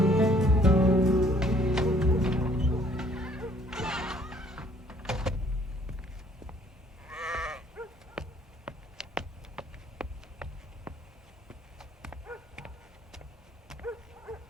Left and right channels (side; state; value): both; normal; correlation 0.60